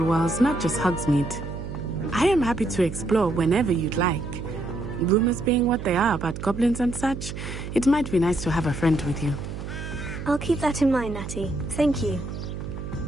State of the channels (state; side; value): noise; right; hum, 8 dB below the sound